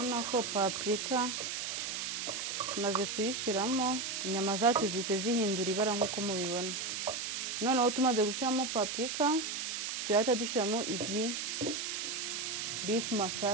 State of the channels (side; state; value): right; noise; hiss, 3 dB below the sound